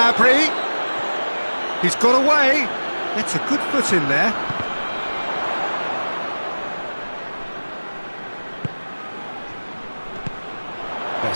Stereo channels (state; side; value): inverted; both; correlation -1.00